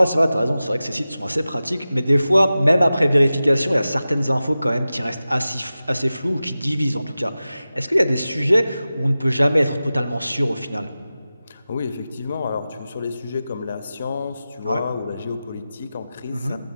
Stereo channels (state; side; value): inverted; both; correlation -0.95